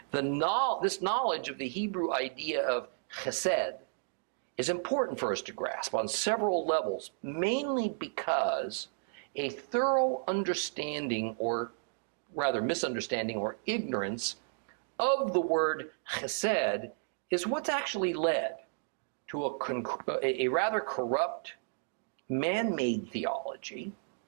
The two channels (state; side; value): silent; left; digital silence